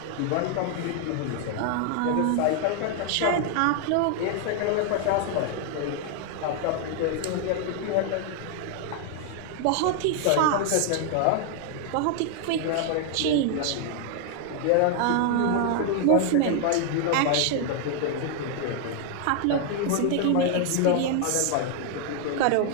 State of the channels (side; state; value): both; different; correlation 0.00